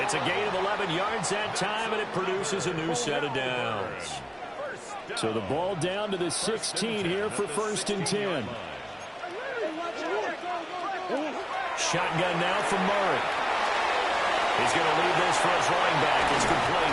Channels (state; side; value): identical; both; correlation 1.00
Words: It's a gain of 11 yards that time, and it produces a new set of downs. So the ball down to the 16 here for 1st and 10. Shotgun now from Murray. He's going to leave this for his running back. It's